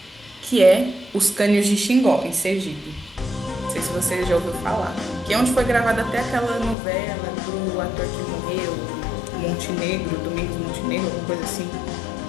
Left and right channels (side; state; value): right; drops out; at 6.8 s